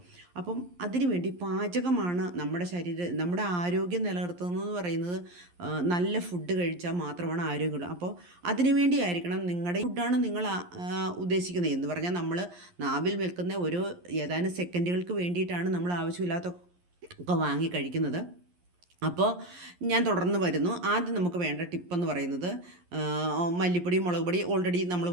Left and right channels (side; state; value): left; late; 11 ms